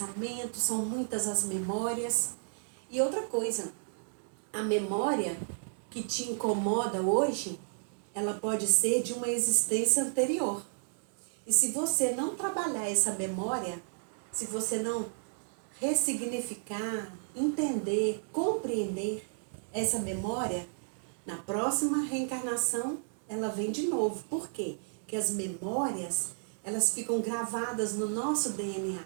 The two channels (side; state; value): left; silent; digital silence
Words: são muitas as memórias. E outra coisa, a memória que te incomoda hoje, ela pode ser de uma existência anterior. E se você não trabalhar essa memória, se você não ressignificar, entender, compreender essa memória, na próxima reencarnação ela vem de novo. Por quê? Porque as memórias, elas ficam gravadas no nosso DNA.